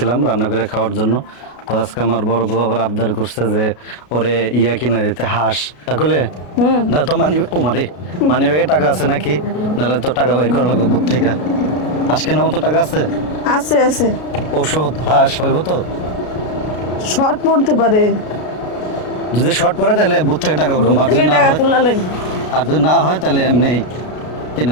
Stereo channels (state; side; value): late; right; 33 ms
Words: রান্না করে খাওয়ার জন্য। তো আজকে আমার বড় বউ আবার আবদার করছে যে ওরে কিনা দিতে, হাঁস। তাহলে না তো মানি ব্যাগে টাকা আছে নাকি? নাহলে তো টাকা বের করা লাগবে বুথ থেকে। হাঁস কেনার মতো টাকা আছে? আছে আছে। ওষুধ হাঁস হইব তো? শর্ট পড়তে পারে। যদি শর্ট পড়ে তাহলে বুথ থেকে টাকা উঠবো, আর যদি না টাকা হয়, তোলা লাগবে। আর যদি না হয় তাহলে এমনি কিনে